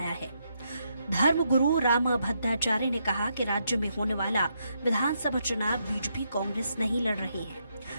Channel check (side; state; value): both; inverted; correlation -0.79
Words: है। धर्मगुरु राम भद्राचार्य ने कहा कि राज्य में होने वाला विधानसभा चुनाव बीजेपी कांग्रेस नहीं लड़ रही है,